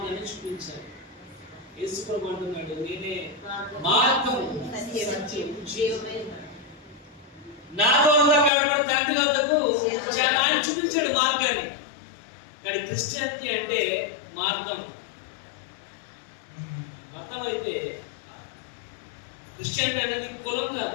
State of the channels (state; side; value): drops out; right; at 8.5 s